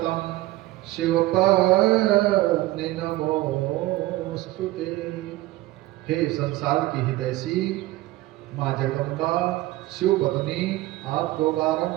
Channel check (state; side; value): quieter; left; 17.5 dB